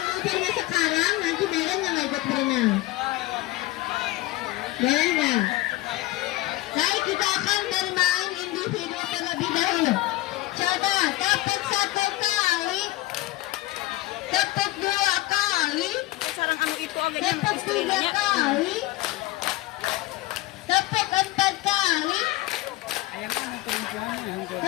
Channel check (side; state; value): right; quieter; 18.2 dB